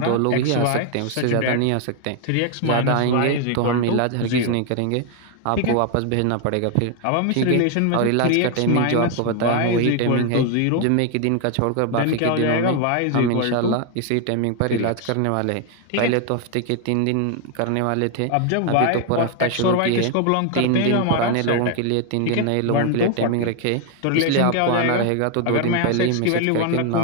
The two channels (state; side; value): different; both; correlation 0.00